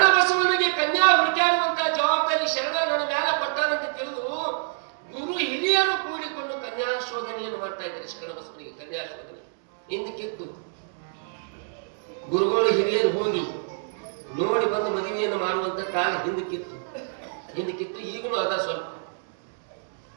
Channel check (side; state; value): left; silent; digital silence